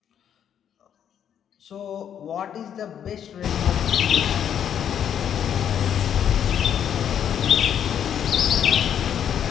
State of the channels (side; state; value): right; quieter; 9.1 dB